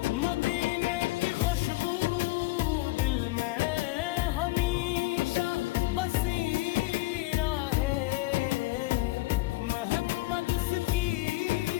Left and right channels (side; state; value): right; quieter; 20.1 dB